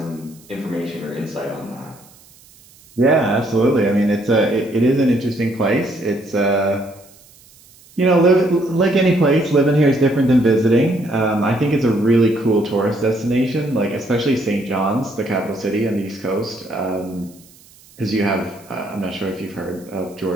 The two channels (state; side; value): noise; right; hiss, 26 dB below the sound